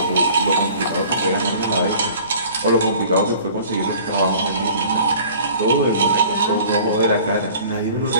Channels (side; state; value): both; inverted; correlation -0.48